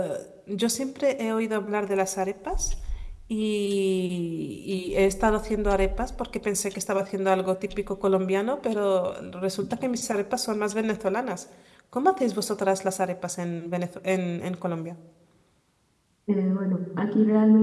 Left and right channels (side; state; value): both; identical; correlation 1.00